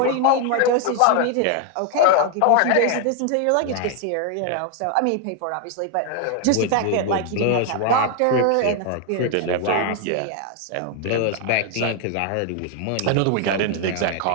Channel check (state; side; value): different; both; correlation 0.00